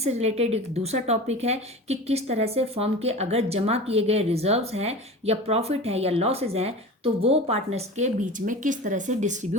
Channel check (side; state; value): both; normal; correlation 0.33